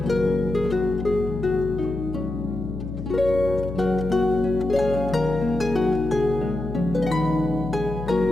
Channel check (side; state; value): left; noise; hum, 8 dB below the sound